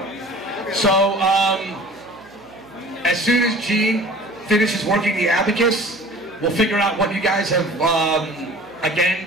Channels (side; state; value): right; noise; hum, 27 dB below the sound